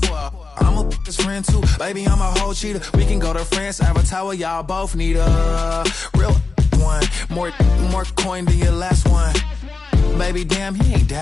I'm a his friend too, baby, I'm a whole cheater. We can go to France, Avatar, y'all both need a real one. More coin than your last one. Baby, damn, he ain't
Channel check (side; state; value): right; quieter; 4.0 dB